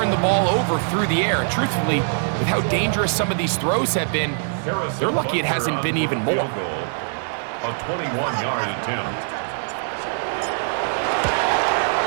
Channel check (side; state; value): left; silent; 56 dB below the other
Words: the ball over through the air. And truthfully, with how dangerous some of these throws have been, they're lucky it hasn't been even more. A 21-yard attempt.